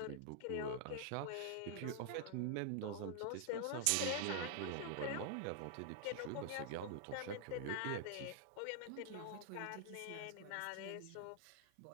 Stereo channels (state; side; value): different; both; correlation 0.00